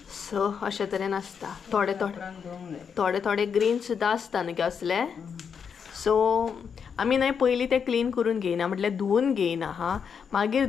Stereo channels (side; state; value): right; quieter; 6.7 dB